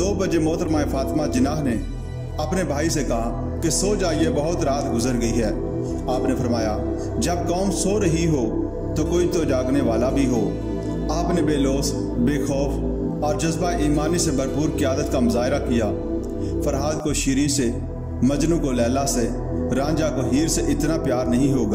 बजे मोहतरमा फातिमा जिन्ना ने अपने भाई से कहा कि सो जाइए, बहुत रात गुजर गई है। आपने फरमाया, जब कौम सो रही हो तो कोई तो जागने वाला भी हो। आपने बेलौस, बेखौफ और जज्बा ईमानी से भरपूर क़यादत का मुजाहरा किया। फरहाद को शीरी से, मजनू को लैला से, रांझा को हीर से इतना प्यार नहीं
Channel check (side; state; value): both; identical; correlation 1.00